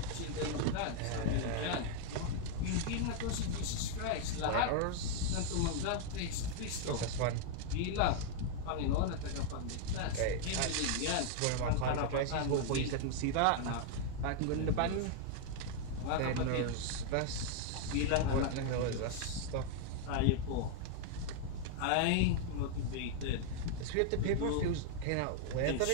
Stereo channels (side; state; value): both; different; correlation 0.00